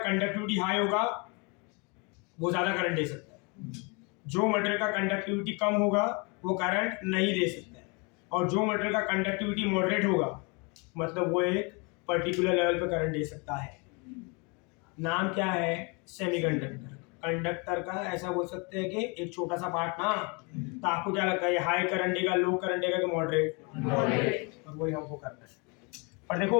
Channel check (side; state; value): right; quieter; 31.2 dB